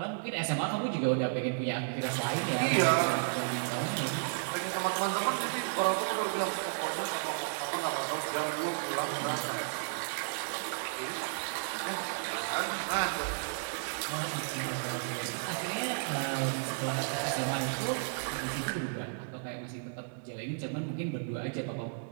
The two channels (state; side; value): silent; left; digital silence